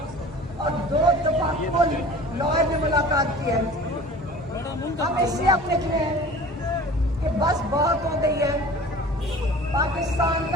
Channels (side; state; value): both; normal; correlation 0.42